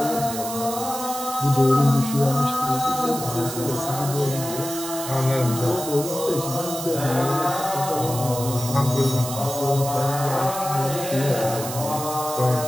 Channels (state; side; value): noise; right; hiss, 8 dB below the sound